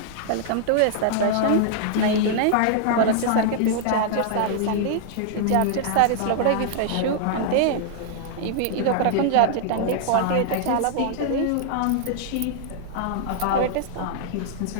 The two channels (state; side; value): different; both; correlation -0.01